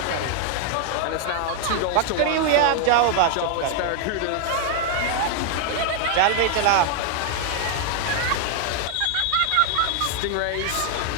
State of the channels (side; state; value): both; different; correlation 0.00